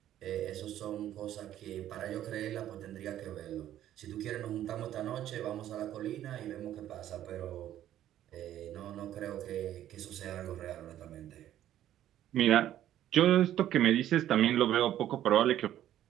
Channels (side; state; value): left; quieter; 12.1 dB